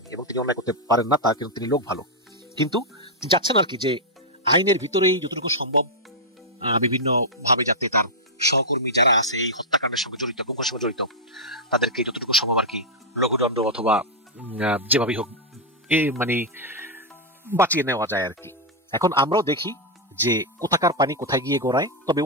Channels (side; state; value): both; normal; correlation -0.04